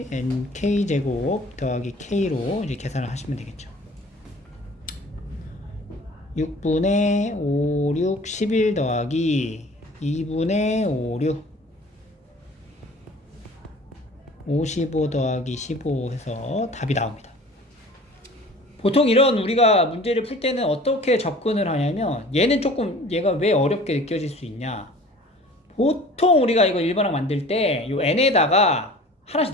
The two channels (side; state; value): both; normal; correlation 0.46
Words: nk제곱 더하기 k로 이제 계산을 하시면 되겠죠. 6분의 5, 6, 11 더하기 2분의 5, 6 55 더하기 15 해서 답이 나옵니다. 보통 이런 우리가 문제를 풀 때는 어떻게 접근을 하냐면, 얘는 조금 얘가 왜 어렵게 느껴질 수 있냐, 보통 우리가 이거 일반항 만들 때 요 n에다가 하나씩